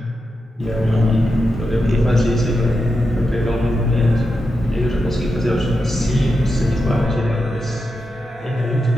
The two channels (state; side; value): normal; both; correlation 0.88